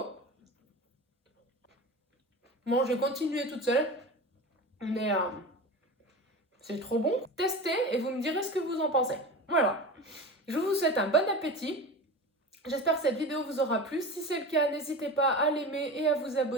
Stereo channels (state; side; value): normal; both; correlation 0.30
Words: Bon, je vais continuer toute seule. Mais c'est trop bon. Testez et vous me direz ce que vous en pensez. Voilà. Je vous souhaite un bon appétit. J'espère que cette vidéo vous aura plu. Si c'est le cas, n'hésitez pas à l'aimer et à vous